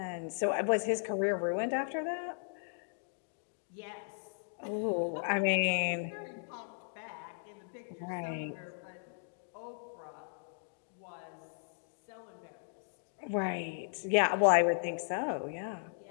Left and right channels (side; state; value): right; silent; digital silence